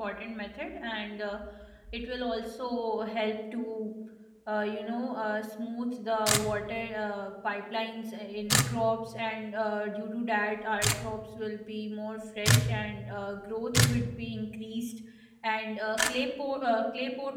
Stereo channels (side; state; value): both; identical; correlation 1.00